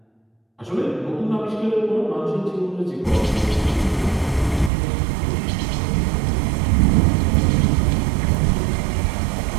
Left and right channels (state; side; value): drops out; left; at 4.7 s